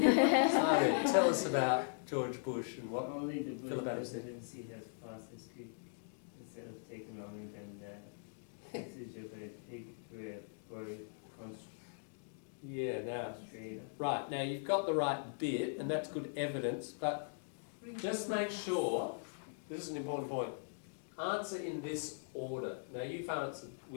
tell us about George Bush and what only the Philip Bush Adams said. presidency has passed as quick instead of taking longer than that. This is a very Yeah, now, concentrated. right, now you've got the right bit, and that's good evidence, but just make sure, this is an important point, answer in this order. Now you've answered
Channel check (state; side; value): silent; right; digital silence